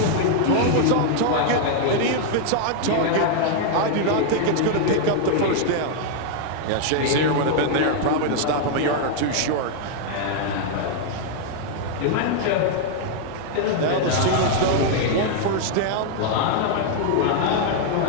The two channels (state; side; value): different; both; correlation 0.00